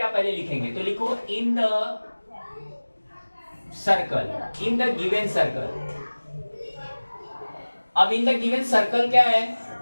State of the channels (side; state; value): both; inverted; correlation -1.00